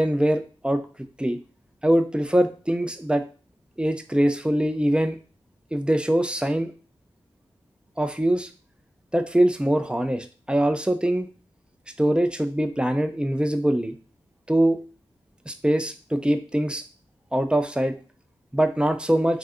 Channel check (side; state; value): both; normal; correlation 0.96